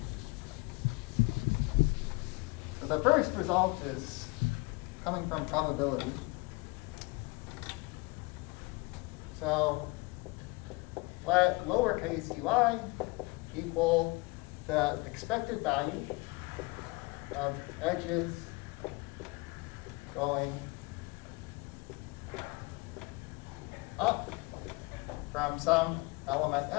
The first result is coming from probability. So let lowercase ui equal the expected value of edges going up from some element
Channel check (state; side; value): quieter; right; 25.4 dB